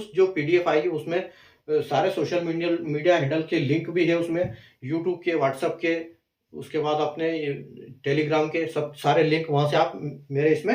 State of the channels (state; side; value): identical; both; correlation 1.00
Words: जो पीडीएफ आएगी उसमें सारे सोशल मीडिया हैंडल के लिंक भी है उसमें, यूट्यूब के, व्हाट्सएप के, उसके बाद अपने टेलीग्राम के सब सारे लिंक, वहां से आप मेरे